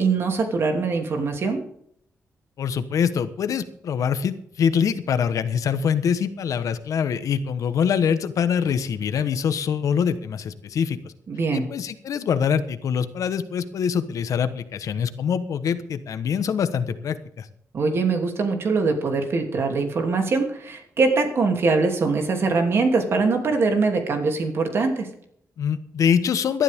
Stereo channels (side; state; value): both; normal; correlation 0.66